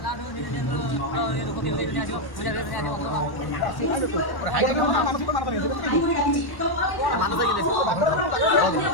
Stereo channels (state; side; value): late; right; 1.1 ms